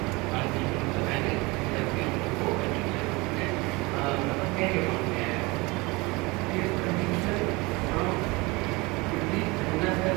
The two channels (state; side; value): quieter; left; 24.6 dB